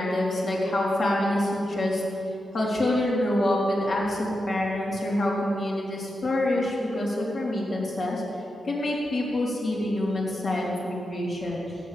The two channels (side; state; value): both; normal; correlation 0.88